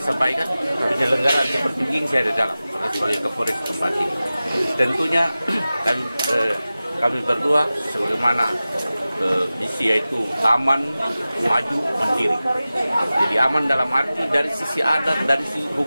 penyelenggaraan seperti begini saya ada dalam sebagai Kapolres tempat ini. Tentunya kami berdua sebagaimana misi yaitu aman, maju, mandiri. Jadi aman dalam arti dari sisi adat, dari sisi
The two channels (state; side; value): inverted; both; correlation -0.96